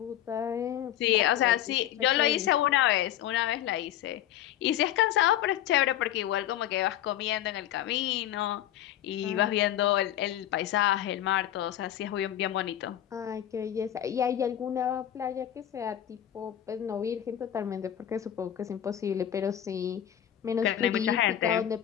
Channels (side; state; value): right; quieter; 11.4 dB